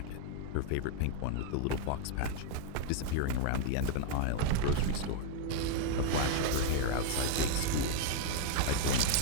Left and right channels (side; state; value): both; different; correlation 0.00